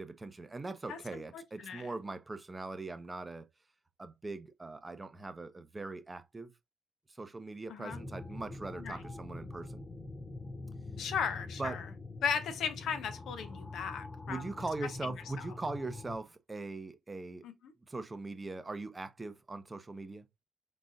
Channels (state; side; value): normal; both; correlation 0.78